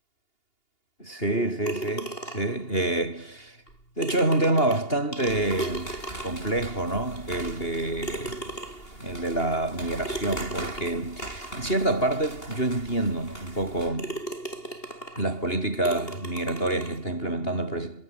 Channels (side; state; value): right; late; 2.8 ms